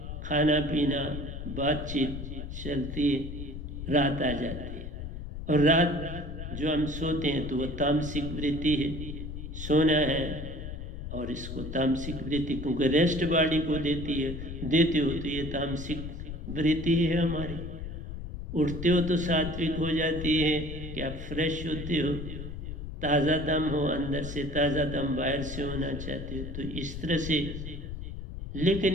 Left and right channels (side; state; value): left; noise; rumble, 8 dB below the sound